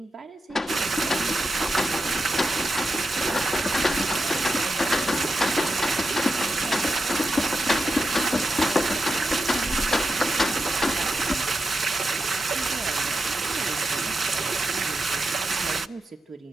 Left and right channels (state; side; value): normal; both; correlation 0.88